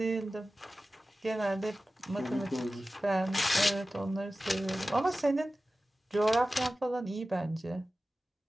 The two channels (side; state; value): both; normal; correlation 0.95